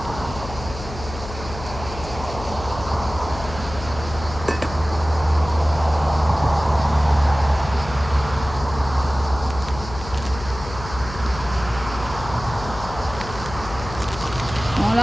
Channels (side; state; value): left; noise; hum, 11 dB below the sound